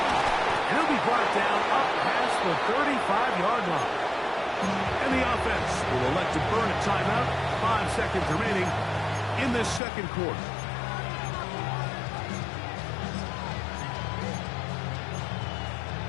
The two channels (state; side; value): drops out; right; at 9.8 s